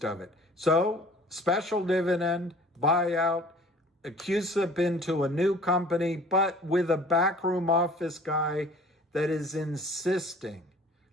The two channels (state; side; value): normal; both; correlation 0.49